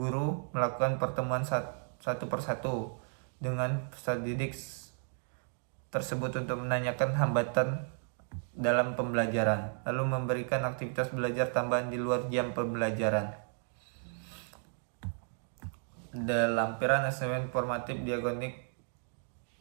melakukan pertemuan satu persatu dengan peserta didik tersebut untuk menanyakan hambatan dalam pembelajaran, lalu memberikan aktivitas belajar tambahan di luar jam pembelajaran. Ada lampiran asesmen formatif diagonik,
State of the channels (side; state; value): left; silent; 55 dB below the other